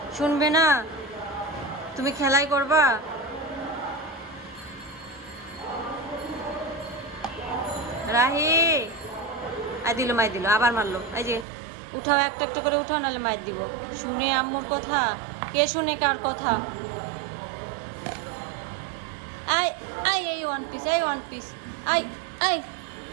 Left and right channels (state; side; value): drops out; left; at 11.5 s